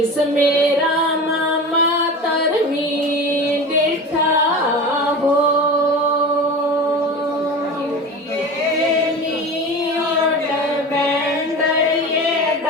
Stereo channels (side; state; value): both; normal; correlation 0.31